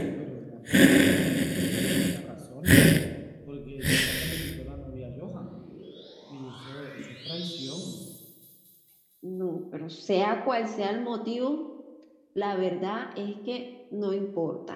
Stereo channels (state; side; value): identical; both; correlation 1.00